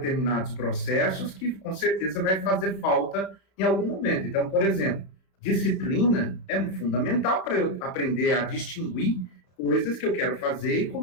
processos que, com certeza, vai fazer falta em algum momento. Então, por exemplo, disciplina é fundamental para eu aprender a distinguir coisas que eu quero fazer e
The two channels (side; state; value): right; late; 32 ms